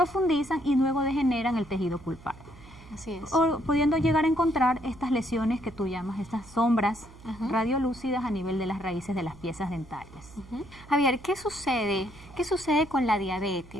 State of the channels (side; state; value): right; noise; hum, 20 dB below the sound